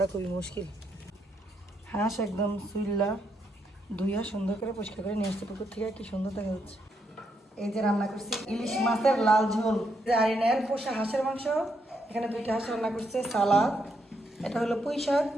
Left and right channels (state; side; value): normal; both; correlation 0.78